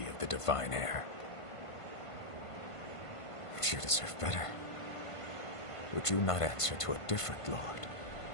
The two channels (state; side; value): late; right; 1.5 ms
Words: of the Divine Heir. But you deserve better. Would you not answer to a different lord?